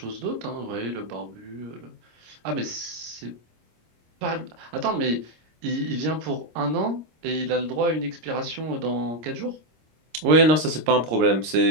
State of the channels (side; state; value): left; late; 26 ms